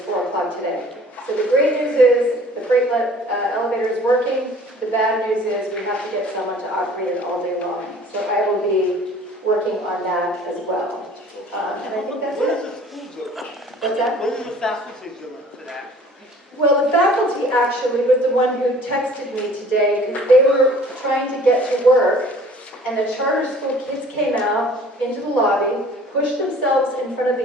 4 o'clock today. So the great news is the freight elevator is working. The bad news is we have to get someone to operate it all day long. So I will be working on that as well. And I think that's it. What's that? What is the faculty doing for that? Well, the faculty actually was the one who texted me today because they were trying to get to work, and the charter school kids came out into the lobby, pushed themselves in front of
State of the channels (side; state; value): both; normal; correlation 0.50